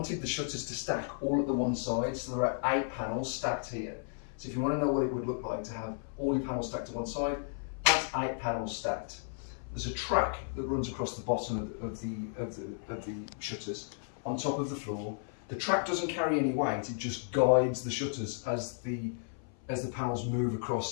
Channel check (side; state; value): right; silent; 55 dB below the other